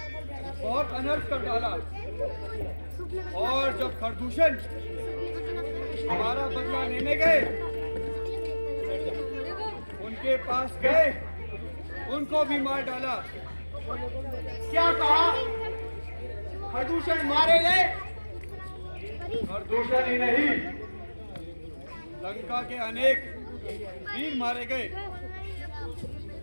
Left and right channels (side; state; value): both; inverted; correlation -1.00